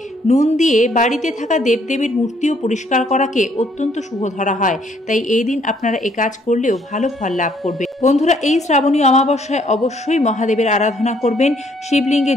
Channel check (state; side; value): normal; both; correlation 0.66